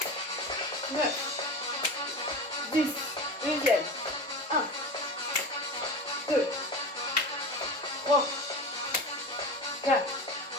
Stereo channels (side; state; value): both; normal; correlation 0.29